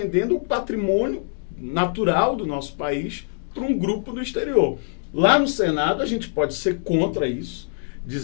o patrimônio natural do nosso país para um grupo do exterior. Lá no Senado a gente pode ser contra isso,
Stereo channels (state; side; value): silent; right; digital silence